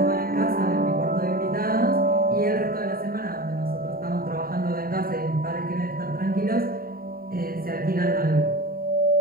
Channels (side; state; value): left; late; 0.43 ms